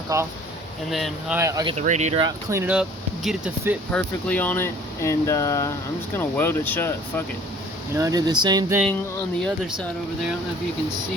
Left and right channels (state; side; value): normal; both; correlation 0.52